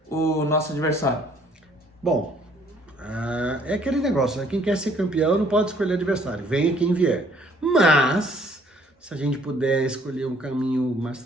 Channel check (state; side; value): normal; both; correlation 0.61